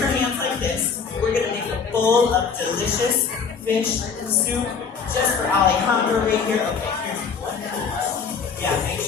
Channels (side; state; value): right; quieter; 5.9 dB